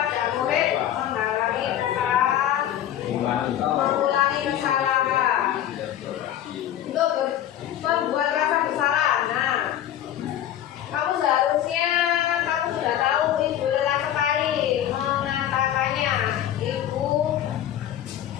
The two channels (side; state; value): right; quieter; 11.5 dB